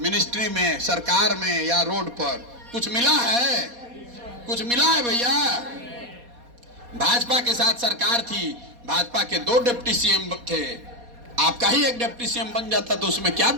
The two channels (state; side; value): late; left; 4.2 ms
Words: मिनिस्ट्री में, सरकार में या रोड पर कुछ मिला है? कुछ मिला है भैया? भाजपा के साथ सरकार थी, भाजपा के 2 डिप्टी सीएम थे, आपका ही एक डिप्टी सीएम बन जाता तो उसमें क्या